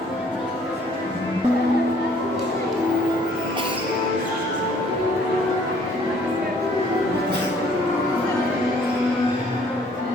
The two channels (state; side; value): normal; both; correlation 0.59